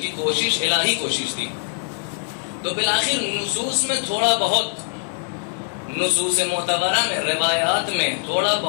کوشش الہی کوشش تھی۔ تو بالآخر نصوص میں تھوڑا بہت، نصوص معتبرہ میں، روایات میں تھوڑا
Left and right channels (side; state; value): right; silent; 61 dB below the other